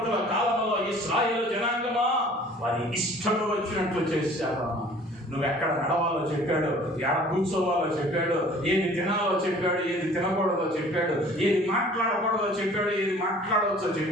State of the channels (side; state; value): both; normal; correlation 0.50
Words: కాలంలో ఇశ్రాయేలు జనాంగమా వారి ఇష్టం వచ్చినట్లు చేశారు. నువ్వెక్కడ నడవాలో చెప్పాడు, ఎక్కడ కూర్చోవాలో చెప్పాడు, ఏది తినాలో చెప్పాడు, ఏది తినకూడదో చెప్పాడు, ఏది మాట్లాడకూడదో చెప్పాడు, ఏది మాట్లాడవచ్చో